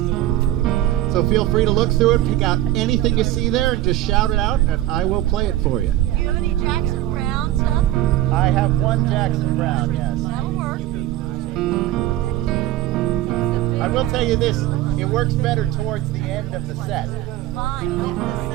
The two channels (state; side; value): quieter; left; 14.5 dB